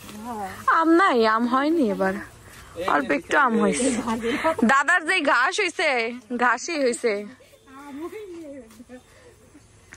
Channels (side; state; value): both; identical; correlation 1.00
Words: আম নাই, আম হয়নি এবার, অল্প একটু আম হয়েছে। দাদার যে ঘাস হয়েছে, ঘাসই হয়েছে।